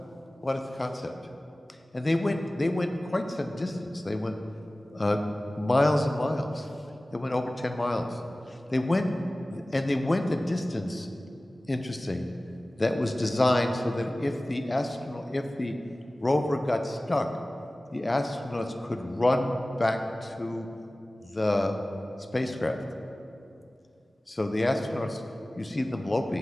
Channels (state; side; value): normal; both; correlation 0.98